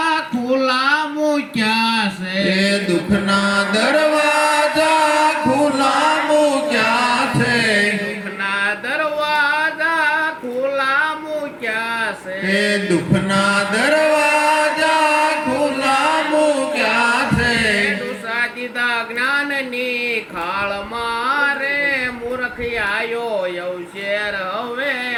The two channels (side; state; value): both; identical; correlation 1.00